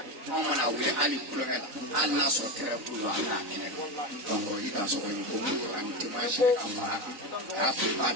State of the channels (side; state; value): left; late; 3.9 ms